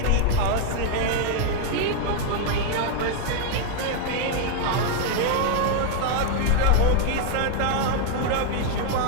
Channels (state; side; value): different; both; correlation 0.00